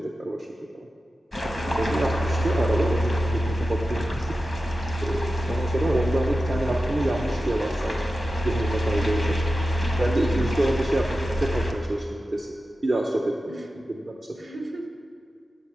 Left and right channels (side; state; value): both; normal; correlation 0.93